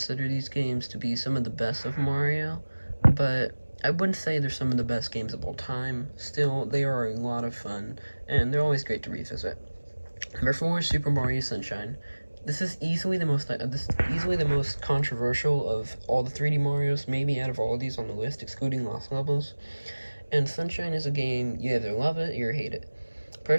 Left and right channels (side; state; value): both; inverted; correlation -1.00